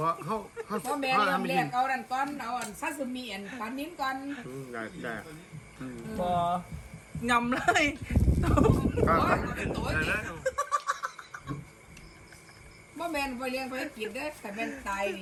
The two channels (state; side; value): identical; both; correlation 1.00